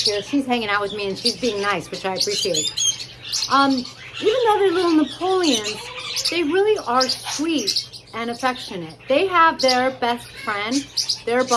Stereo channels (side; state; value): both; identical; correlation 1.00